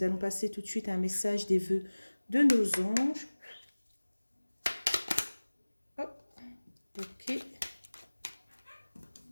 allons passer tout de suite à un message des vœux de nos anges. Hop, ok,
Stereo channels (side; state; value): both; inverted; correlation -1.00